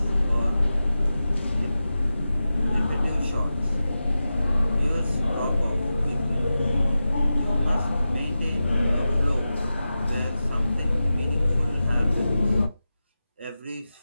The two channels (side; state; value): both; inverted; correlation -0.93